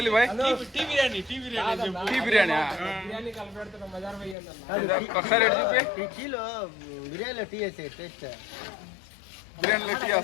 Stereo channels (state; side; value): drops out; right; at 4.4 s